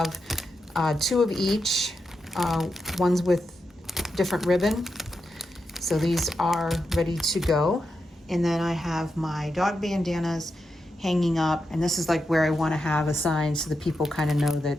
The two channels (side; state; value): both; normal; correlation 0.87